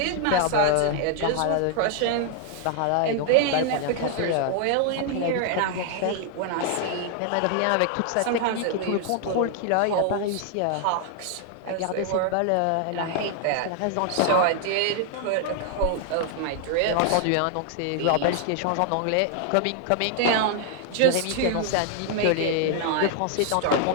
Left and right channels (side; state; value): both; different; correlation 0.00